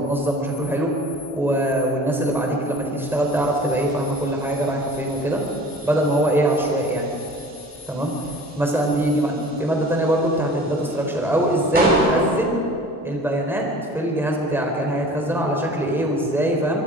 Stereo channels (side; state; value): both; normal; correlation 0.44